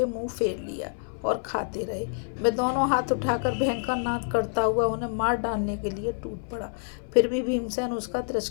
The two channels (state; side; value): silent; right; 60 dB below the other